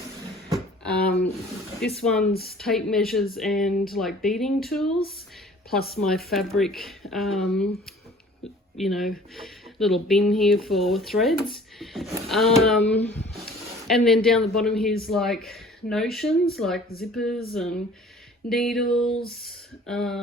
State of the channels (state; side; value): normal; both; correlation 0.50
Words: This one's tape measures and like beading tools, plus my fabric, you know, little bin here for threads. And then down the bottom here's like notions, like zippers and needles,